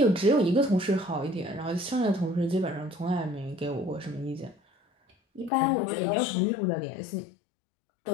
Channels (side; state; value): right; drops out; at 5.5 s